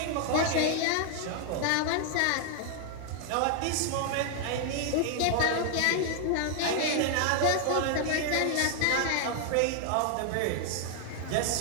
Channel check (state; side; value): different; both; correlation 0.00